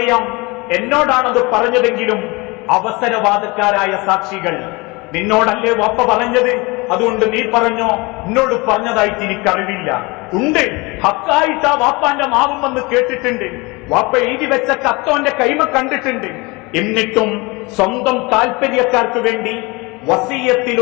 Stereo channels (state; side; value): quieter; right; 25.5 dB